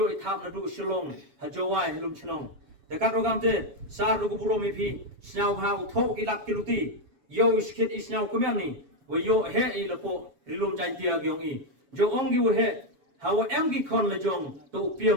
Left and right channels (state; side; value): late; left; 7.2 ms